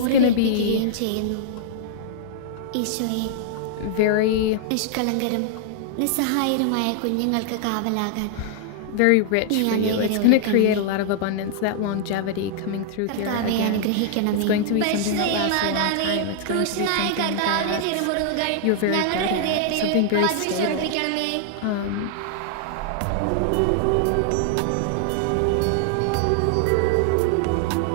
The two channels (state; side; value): different; both; correlation -0.01